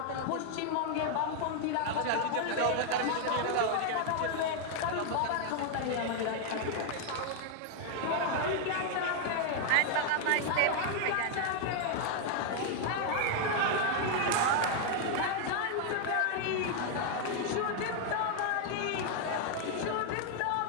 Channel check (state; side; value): different; both; correlation 0.00